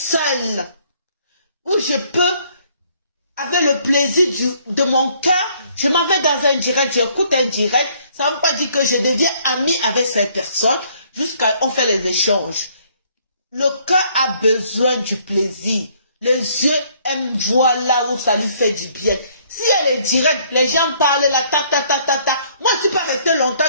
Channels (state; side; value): inverted; both; correlation -0.63